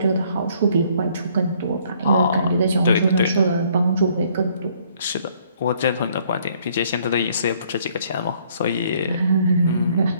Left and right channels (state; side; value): inverted; both; correlation -0.64